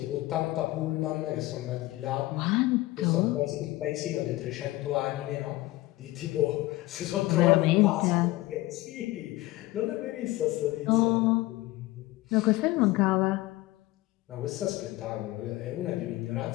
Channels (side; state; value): right; quieter; 18.6 dB